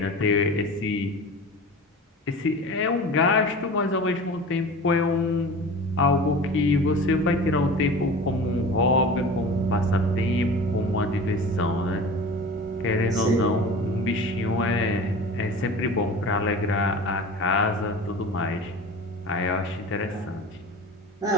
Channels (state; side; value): normal; both; correlation 0.36